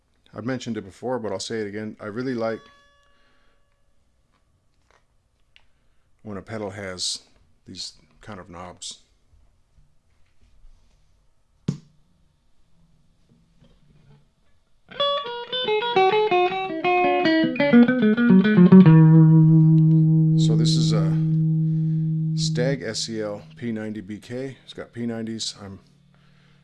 I've mentioned it before, but I'll say it again. I really like when a pedal has these kind of knobs. So this is a Stagg SEL90-BK. It's got P90s. I'm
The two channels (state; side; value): identical; both; correlation 1.00